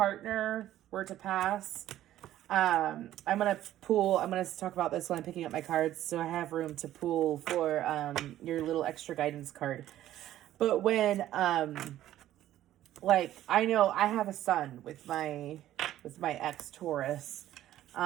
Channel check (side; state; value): left; quieter; 13.1 dB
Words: were to pass, I'm going to talk about this when I'm picking up my cards, so I have room to pull for your little extra guidance card. But when I know I have a son with my ex Taurus,